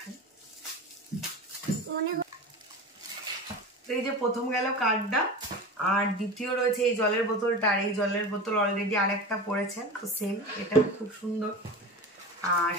তো এই যে প্রথম গেল কার্ডটা, আর দ্বিতীয় রয়েছে এই জলের বোতলটা। আর এই জলের বোতল অলরেডি আরেকটা পড়েছে, তো সেম, এটা খুব সুন্দর। আর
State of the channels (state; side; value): normal; both; correlation 0.29